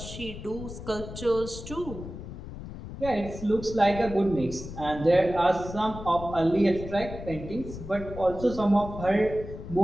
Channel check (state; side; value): noise; left; rumble, 11 dB below the sound